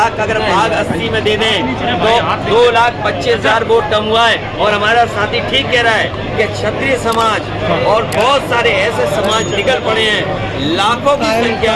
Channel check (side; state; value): both; identical; correlation 1.00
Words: का अगर भाग 80 में दे दें तो 2,25,000 वोट कम हुआ है। और हमारा साथी ठीक कह रहा है कि क्षत्रिय समाज और बहुत सारे ऐसे समाज निकल पड़े हैं लाखों की